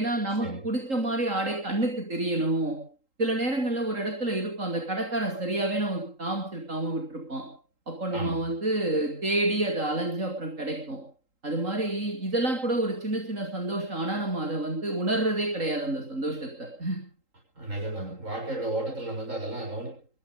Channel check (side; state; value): left; late; 3.8 ms